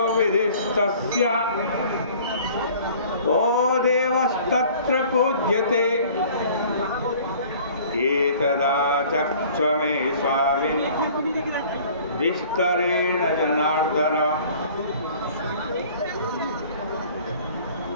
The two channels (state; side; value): inverted; both; correlation -0.50